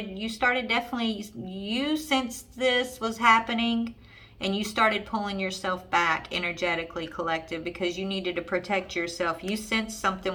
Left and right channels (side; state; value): both; identical; correlation 1.00